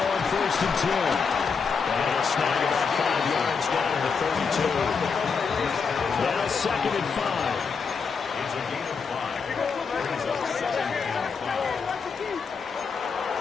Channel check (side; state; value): right; quieter; 5.5 dB